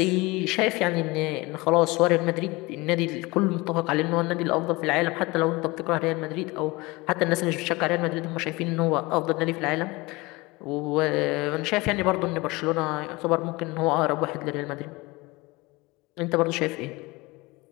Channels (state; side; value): quieter; right; 23.3 dB